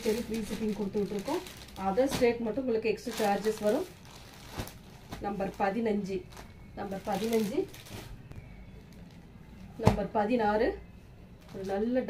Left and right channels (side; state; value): both; identical; correlation 1.00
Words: free shipping கொடுத்துட்டு இருக்கோம். அதர் ஸ்டேட் மட்டும் உங்களுக்கு எக்ஸ்ட்ரா சார்ஜஸ் வரும். நம்பர் 15 நம்பர் 15 நம்பர் 16 ஒரு நல்ல